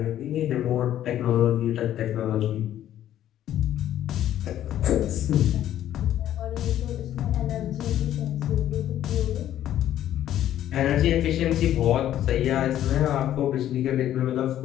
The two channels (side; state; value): right; quieter; 11.9 dB